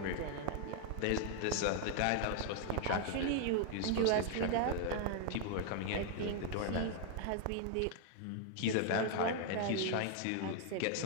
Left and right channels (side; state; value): both; different; correlation 0.00